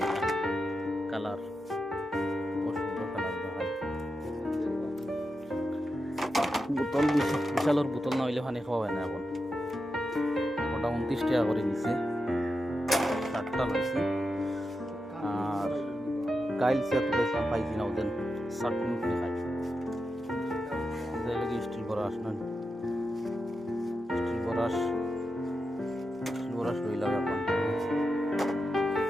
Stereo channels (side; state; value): both; normal; correlation 0.88